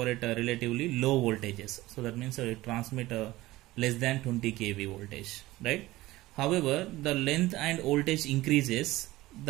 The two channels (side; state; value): left; quieter; 18.0 dB